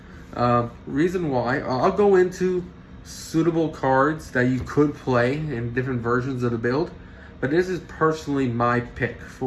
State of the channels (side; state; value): both; identical; correlation 1.00